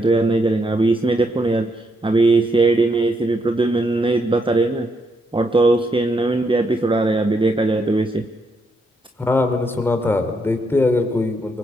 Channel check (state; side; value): normal; both; correlation 0.77